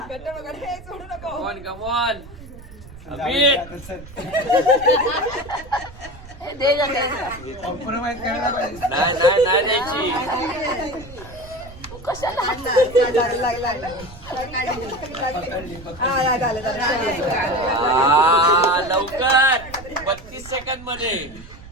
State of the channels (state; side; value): noise; right; rumble, 17 dB below the sound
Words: Come on come on. अमित नाही नाही नाही द्यायची. लवकर 32 सेकंद मध्ये.